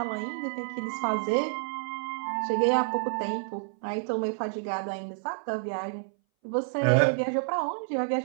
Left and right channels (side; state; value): left; silent; 59 dB below the other